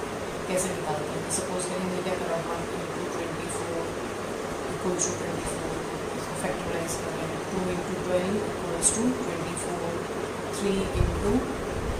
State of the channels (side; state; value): both; identical; correlation 1.00